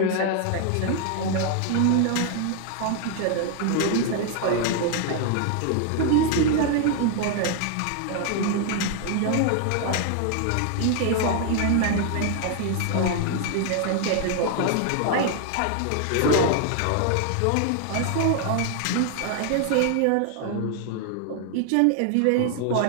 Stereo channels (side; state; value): both; different; correlation 0.00